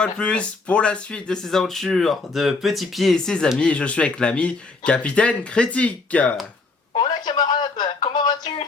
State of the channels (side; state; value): right; quieter; 3.8 dB